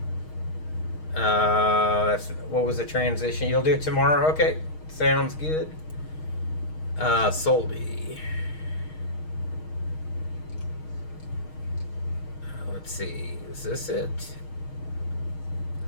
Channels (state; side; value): late; right; 6.4 ms